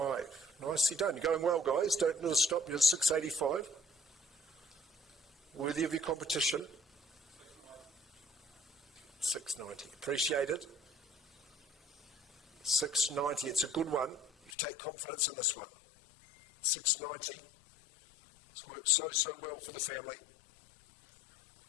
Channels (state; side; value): drops out; right; at 14.6 s